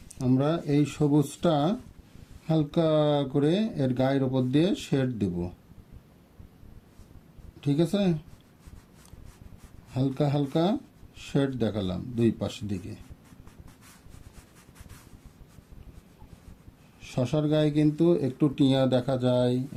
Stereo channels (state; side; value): identical; both; correlation 1.00